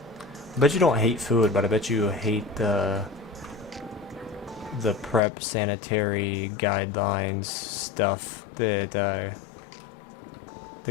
I bet you don't hate food, but I bet you hate the prep sanitary guidelines stuff that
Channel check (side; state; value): right; drops out; at 5.2 s